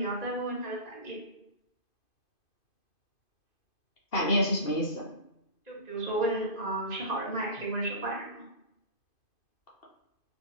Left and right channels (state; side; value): late; right; 2.5 ms